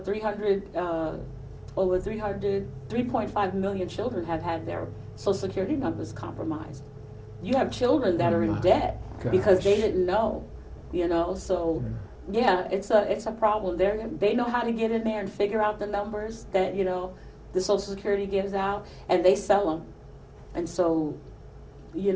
million children have had their Social Security numbers compromised you have children that Oh, are in my debt because they gosh. didn't know, so yeah, it's a problem. They know how to get in there and figure out the numbers that, the Social Security gives out, and they sell them. And so,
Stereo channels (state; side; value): identical; both; correlation 1.00